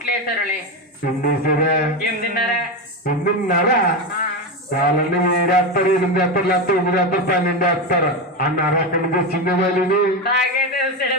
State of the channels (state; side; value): normal; both; correlation 0.15